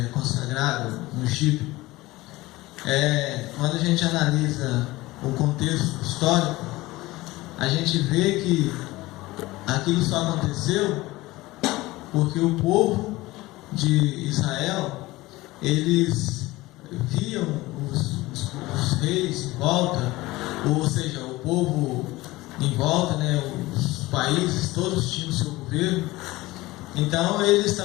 consagrado, ungido. Quando a gente analisa o contexto histórico, a gente vê que aquilo só aconteceu porque o povo de Israel, eles viam os reis em volta, ou seja, o povo em volta, né, os países, todos tinham o seu governo. Então eles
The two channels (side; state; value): right; quieter; 19.4 dB